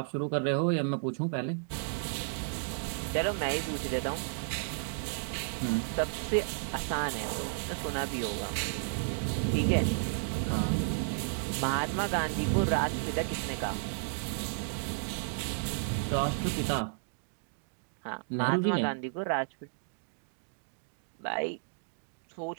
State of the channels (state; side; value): silent; left; digital silence